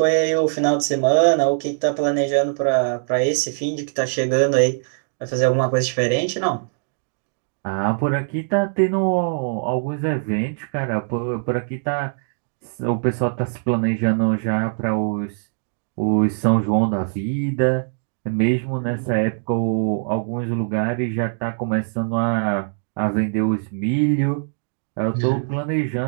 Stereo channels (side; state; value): left; silent; digital silence